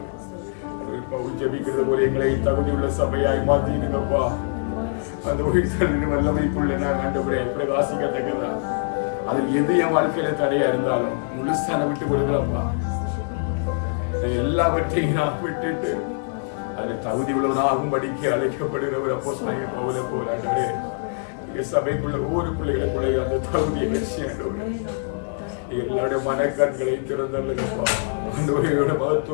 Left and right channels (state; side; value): silent; right; digital silence